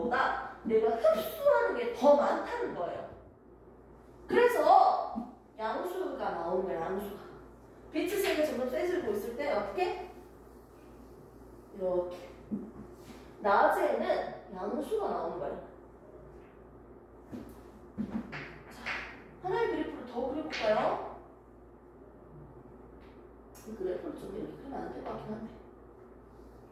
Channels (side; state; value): both; identical; correlation 1.00